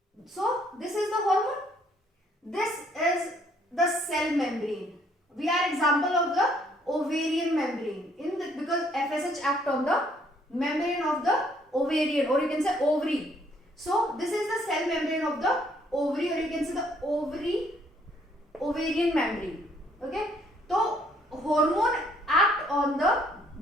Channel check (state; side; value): normal; both; correlation 0.65